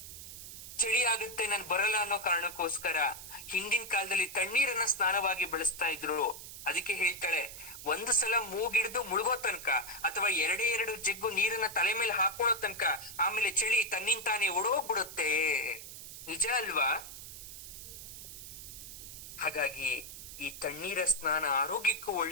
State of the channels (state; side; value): noise; right; hiss, 12 dB below the sound